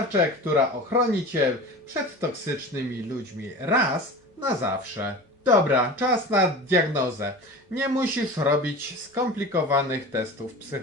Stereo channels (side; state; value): both; normal; correlation 0.34